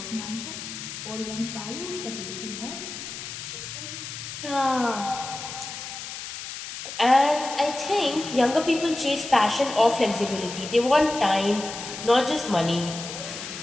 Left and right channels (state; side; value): noise; left; hiss, 9 dB below the sound